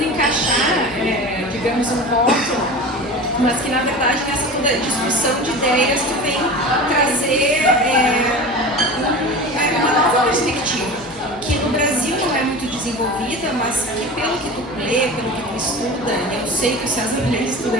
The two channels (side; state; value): left; noise; hum, 23 dB below the sound